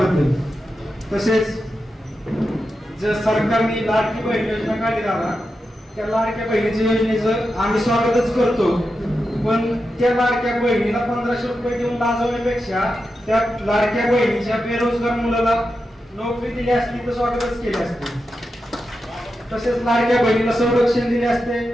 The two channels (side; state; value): both; normal; correlation 0.89